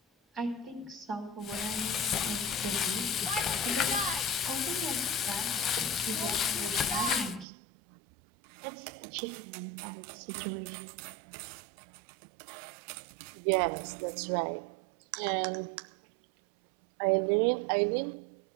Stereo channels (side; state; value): left; drops out; at 7.5 s